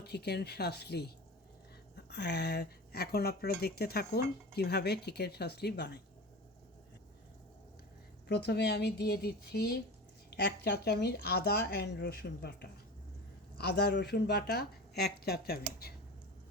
চিকেন শাসলি। এখন আপনারা দেখতে থাকুন কিভাবে চিকেন শাসলি বানাই। প্রথমে আমি দিয়ে দিচ্ছি 1 চা চামচ আদা অ্যান্ড রসুন বাটা, আদা রসুন বাটা 1 চা চামচ।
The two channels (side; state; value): both; normal; correlation 0.31